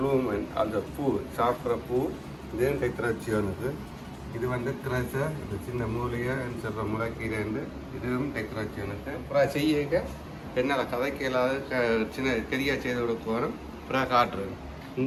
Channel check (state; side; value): identical; both; correlation 1.00